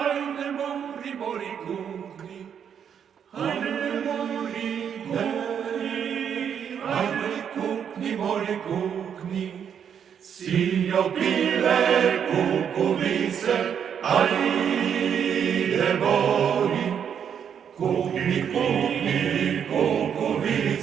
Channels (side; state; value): left; quieter; 8.1 dB